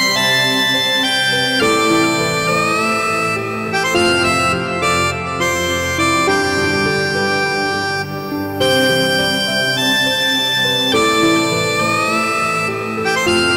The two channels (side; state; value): both; identical; correlation 1.00